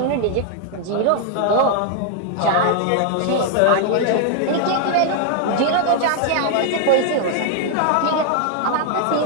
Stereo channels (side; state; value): both; different; correlation 0.00